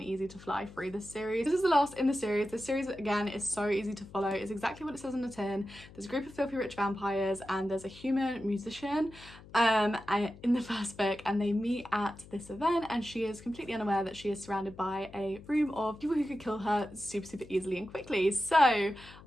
easy to fly through this series. This is the last in the series. This series, again, is so easy to follow. It's exactly what it says on the tin. There's a group of filthy rich vampires and there's a human musician in the first book, and they meet at this event, and she is completely unaware that she is surrounded by a room of people who could kill her super easily and quickly. So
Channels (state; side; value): noise; left; hum, 20 dB below the sound